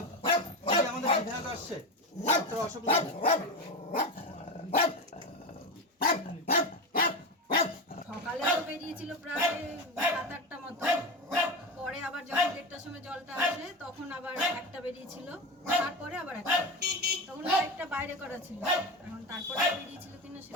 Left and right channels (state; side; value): normal; both; correlation 0.20